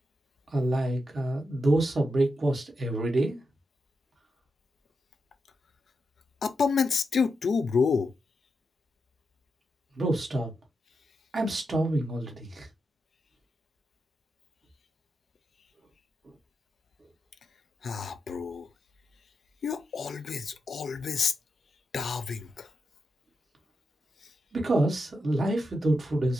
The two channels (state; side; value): normal; both; correlation 0.86